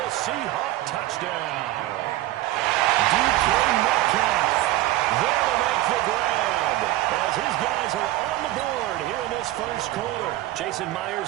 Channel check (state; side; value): quieter; left; 16.1 dB